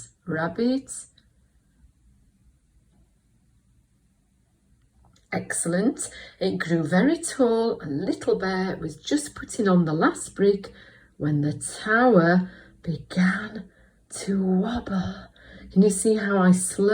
Rabbit. Excellent. It grew very tall and Little Bear was just putting on the last brick when the tower began to wobble. Can you see how I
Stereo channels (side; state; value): both; identical; correlation 1.00